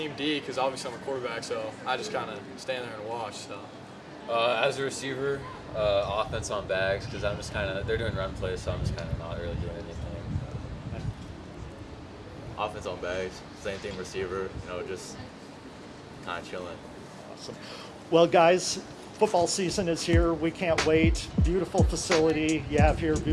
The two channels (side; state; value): both; identical; correlation 1.00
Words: D, because obviously I'm a quarterback, so I just kind of stand there and watch. So. As a receiver, offense on bags, because I'm just kind of, they're doing run plays, so I'm just kind of not really doing anything. Offense on bags, same thing receiver, just kind of chilling. Awesome. Well, guys, football season is here. We can't wait. Beautiful facility you have here,